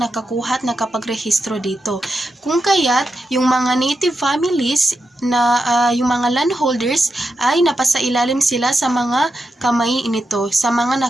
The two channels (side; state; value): both; normal; correlation 0.87